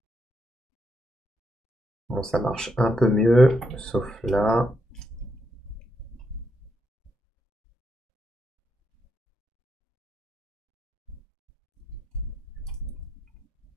Bon, ça marche un peu mieux, sauf là.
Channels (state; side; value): normal; both; correlation 0.81